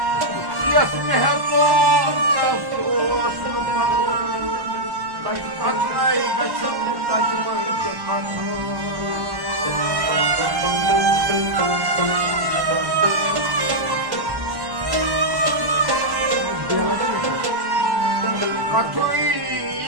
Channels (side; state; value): left; late; 1.1 ms